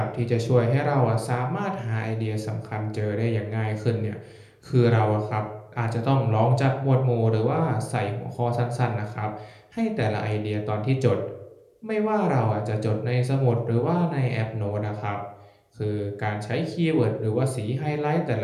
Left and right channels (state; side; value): identical; both; correlation 1.00